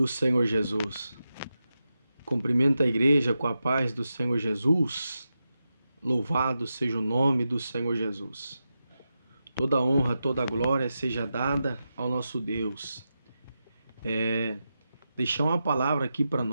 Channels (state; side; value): inverted; both; correlation -0.89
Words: Senhor Jesus. Cumprimento a igreja com a paz do Senhor Jesus. Louvado seja o nome do Senhor Jesus. Toda honra, toda glória seja dada ao nosso Deus. Deixar uma palavra aqui para